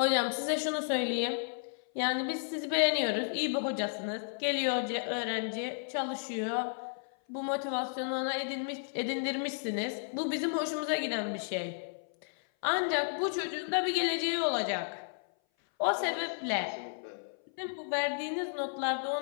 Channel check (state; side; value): silent; right; 56 dB below the other